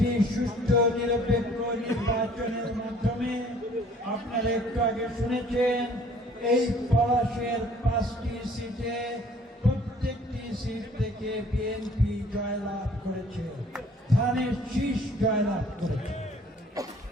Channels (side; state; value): both; normal; correlation 0.55